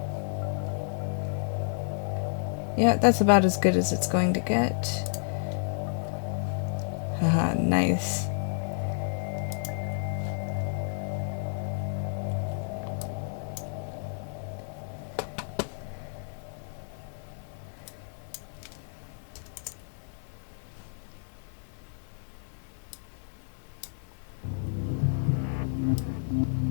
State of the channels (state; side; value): silent; right; 57 dB below the other